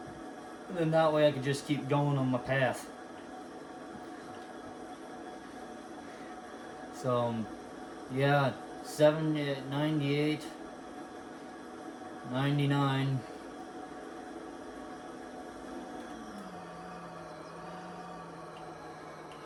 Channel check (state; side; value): identical; both; correlation 1.00